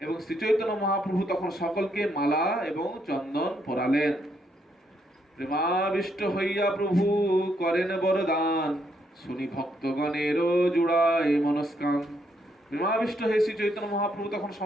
এবং শ্রী চৈতন্য মহাপ্রভু তখন সকলকে মালা এবং চন্দন পরালেন। প্রেমাবিষ্ট হইয়া প্রভু করেন বরদান, শুনি ভক্তগণের জুড়ায় মনস্কান। প্রেমাবিষ্ট হয়ে শ্রী চৈতন্য মহাপ্রভু তখন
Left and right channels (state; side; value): normal; both; correlation 0.75